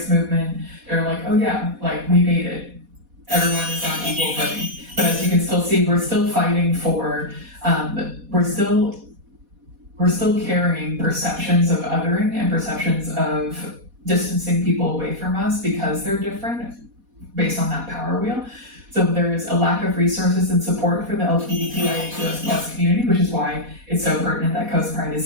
movement. They're like, oh yeah, like we made it. Everyone is on equal footing. But as you can still see, we're still fighting for, we're still carrying perceptions of othering and perceptions of distancing people away from us because they're different based on that power wheel. So there's a lack of resources and support for the LGBTQIA2S+ community, which is why it's so pertinent that CoastPride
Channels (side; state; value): left; late; 4.1 ms